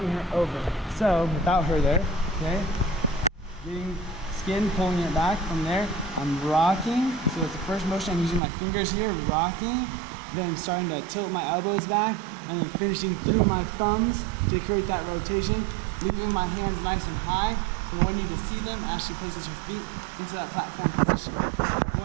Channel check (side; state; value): left; drops out; at 8.4 s